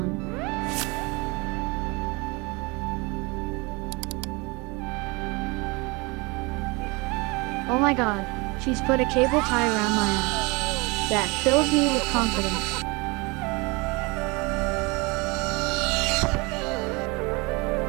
Oh my god, she's put a cable tie around my ass. That fills me with confidence.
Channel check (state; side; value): quieter; left; 26.9 dB